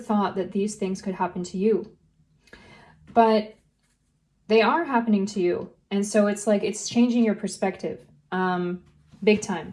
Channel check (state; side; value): identical; both; correlation 1.00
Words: that these things could happen to you. But they are happening to you. And so it's like, it's changing your perspective, big time.